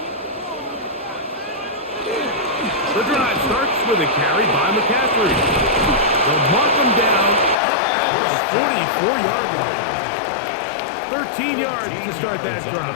The drive starts with a carry by McCaffrey. They'll mark him down up at the 44-yard line. 13 yards to start that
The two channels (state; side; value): drops out; right; at 7.6 s